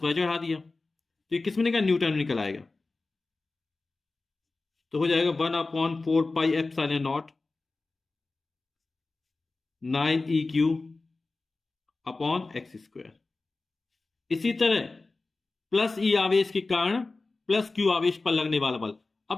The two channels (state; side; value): quieter; right; 3.5 dB